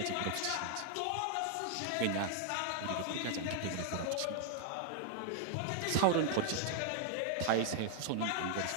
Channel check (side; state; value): both; different; correlation 0.00